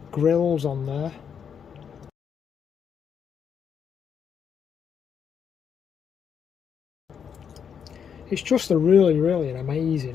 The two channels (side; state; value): right; quieter; 7.4 dB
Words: grills on there. It's just a really an